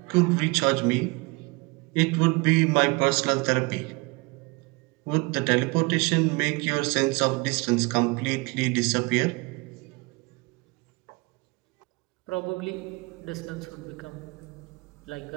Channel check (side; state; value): left; quieter; 26.7 dB